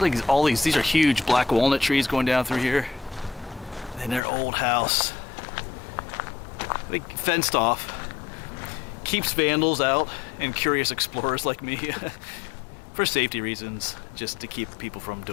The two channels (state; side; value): drops out; right; at 4.2 s